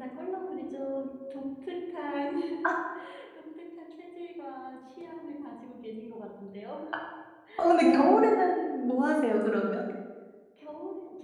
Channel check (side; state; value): both; identical; correlation 1.00